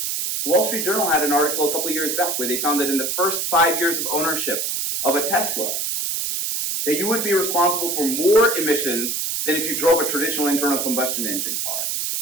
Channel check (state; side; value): noise; right; hiss, 1 dB below the sound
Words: Wall Street Journal had an article a couple of years back where they found that in the first 5 years of ownership of a Tesla, that you would be responsible for more emissions than if you drove a traditional internal combustion engine car.